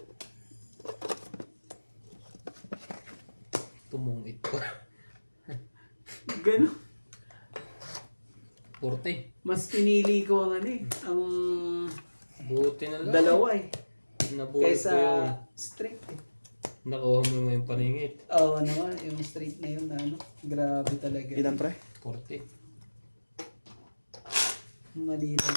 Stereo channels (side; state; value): both; inverted; correlation -1.00